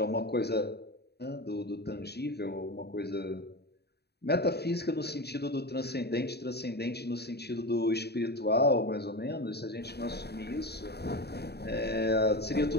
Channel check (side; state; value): right; late; 0.48 ms